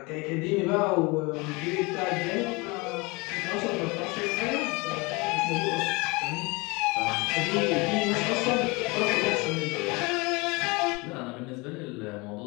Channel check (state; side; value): quieter; right; 26.3 dB